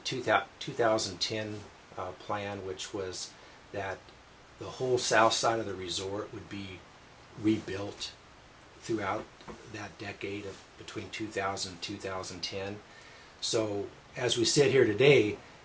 plan, which was that the whole south side of the resort would be rebuilt throughout that decade of between 2000 and 2010. So as we sit here today,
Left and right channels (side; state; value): both; identical; correlation 1.00